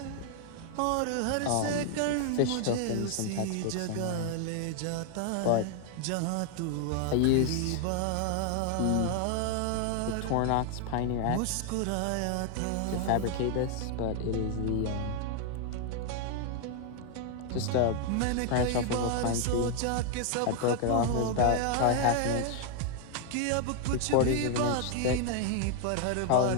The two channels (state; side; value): different; both; correlation 0.00